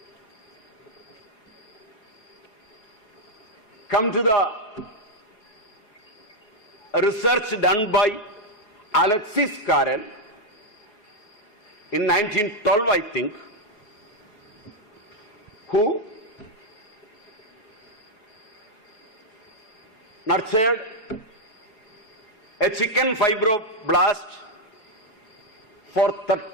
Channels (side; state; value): right; late; 4.8 ms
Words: come to the research done by Alexis Carrel in 1912, I think, who nurtured a chicken fibroblast for